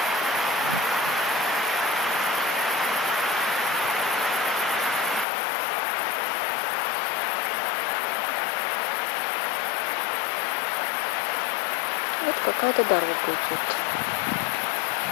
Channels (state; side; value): drops out; right; at 5.2 s